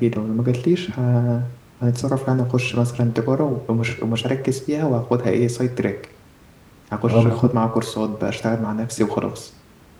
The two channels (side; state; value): both; identical; correlation 1.00